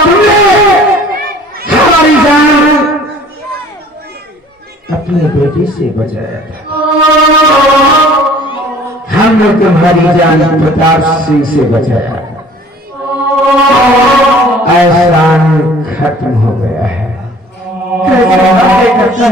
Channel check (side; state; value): both; normal; correlation 0.51